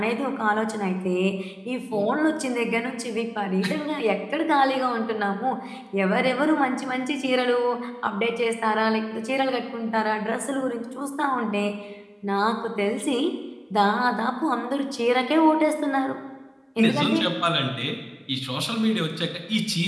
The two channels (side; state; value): both; identical; correlation 1.00